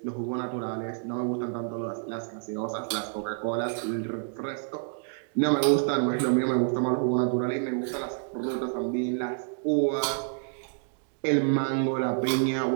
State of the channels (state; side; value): silent; left; digital silence